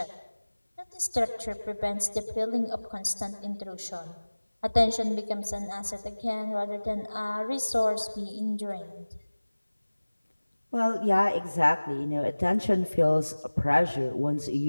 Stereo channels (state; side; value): inverted; both; correlation -1.00